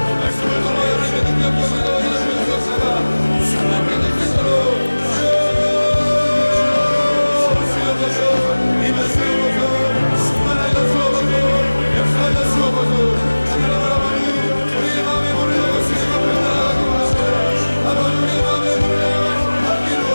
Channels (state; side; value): inverted; both; correlation -1.00